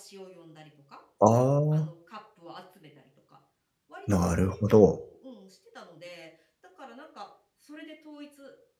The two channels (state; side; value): identical; both; correlation 1.00